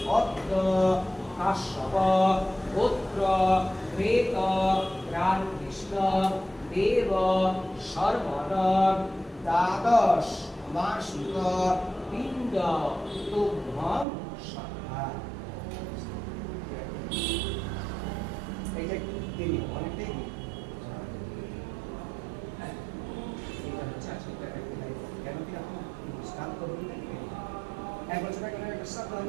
পদ্ম কাশ্যপ পুত্র প্রেত রামকৃষ্ণ দেব সর্বন দ্বাদশ মাসিক পিণ্ড তুভ্যম সহা। এইটা দেরি অনেকটাই দেরি। এইটা হচ্ছে আজকে কেন কি আপনি স্টার্ট করবেন এক বছর আগে একটা শব্দ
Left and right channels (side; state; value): left; drops out; at 14.1 s